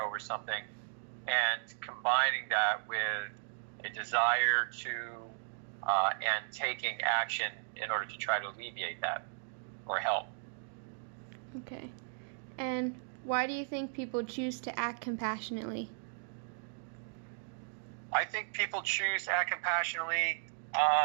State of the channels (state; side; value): silent; left; digital silence